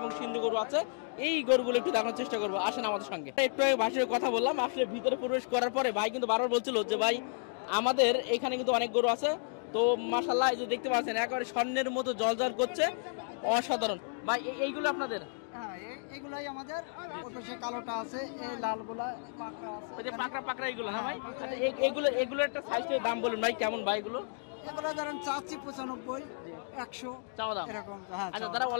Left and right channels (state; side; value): silent; right; digital silence